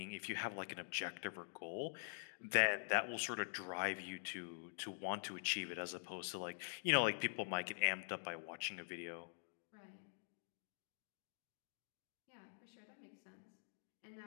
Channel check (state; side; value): silent; right; digital silence